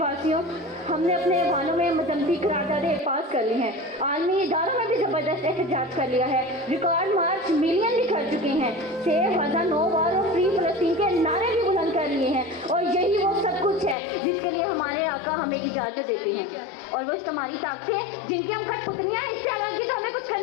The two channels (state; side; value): drops out; right; at 14.0 s